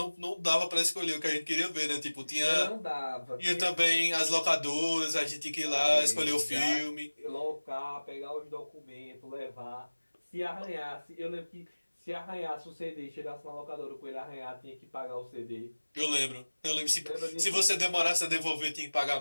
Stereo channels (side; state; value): both; inverted; correlation -1.00